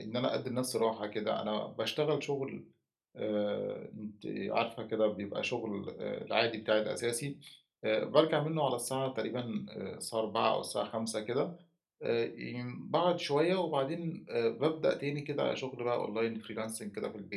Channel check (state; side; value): identical; both; correlation 1.00